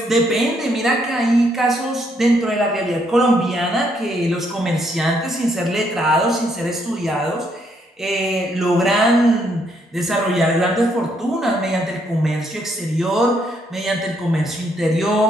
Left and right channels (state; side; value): normal; both; correlation 0.73